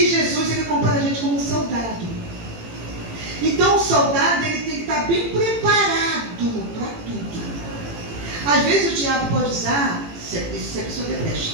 Jesus, ele compara a gente como um soldado. Então o soldado, ele tem que estar bem preparado para tudo. Às vezes o diabo pode usar, se a pessoa debrecha,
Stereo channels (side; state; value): left; late; 18 ms